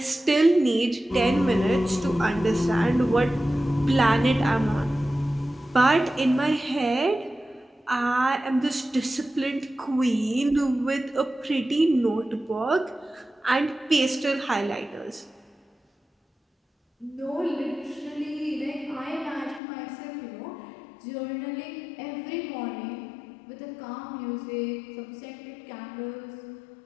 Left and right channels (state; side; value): drops out; right; at 19.6 s